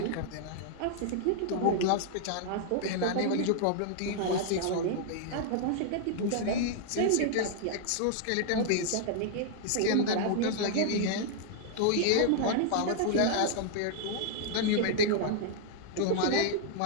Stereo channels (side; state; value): both; different; correlation -0.01